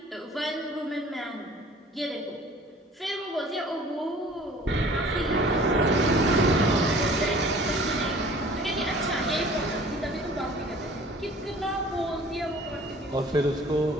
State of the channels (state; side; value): normal; both; correlation 0.49